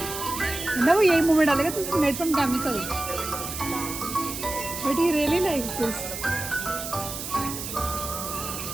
ना वो यही मुँह में डालेगा। This is made from chemicals, but he really likes this.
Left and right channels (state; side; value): noise; right; hiss, 7 dB below the sound